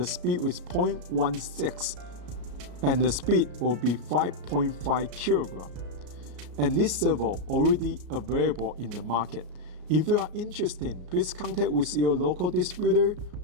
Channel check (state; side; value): late; left; 34 ms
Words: speed is 0.16 and the speed will be 5.5 kilogram. And this servo already available in the market. If you are interested, please contact with your local distributor